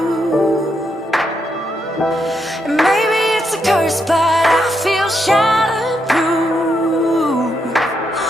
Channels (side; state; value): both; normal; correlation 0.80